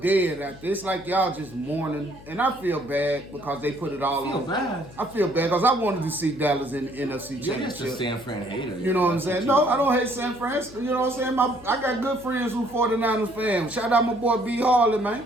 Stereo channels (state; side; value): noise; left; hum, 20 dB below the sound